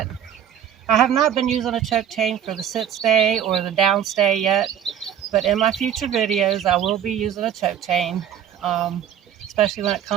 I have not been using a choke chain for the sit stay or the down stay yet, but in my future videos I will be using a choke chain, especially when it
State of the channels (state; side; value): quieter; left; 9.3 dB